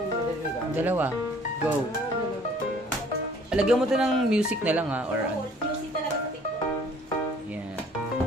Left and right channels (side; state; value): both; normal; correlation 0.56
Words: madali gamit. Dalawa. Go. Alagyan mo to ng music na lang ha, or ano. Music talaga sa TikTok. Yeah.